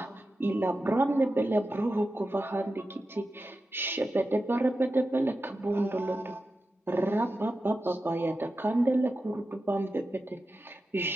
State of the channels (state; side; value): normal; both; correlation 0.91